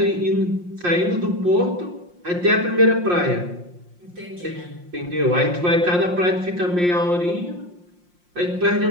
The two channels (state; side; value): late; left; 5.7 ms